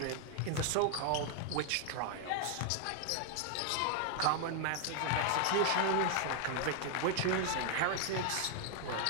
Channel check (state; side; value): different; both; correlation 0.00